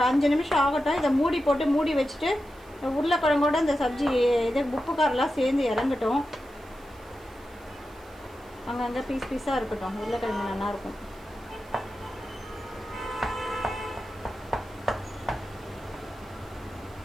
5 நிமிஷம் ஆகட்டும். இதை மூடி வச்சுட்டு உருளைக்கிழங்கோட இந்த சப்ஜி உப்பு காரெல்லாம் சேர்ந்து இறங்கட்டும். அங்கங்கே பீஸாக இருக்கட்டும். உருளைக்கிழங்கு நல்லாயிருக்கும்.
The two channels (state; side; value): noise; right; hiss, 28 dB below the sound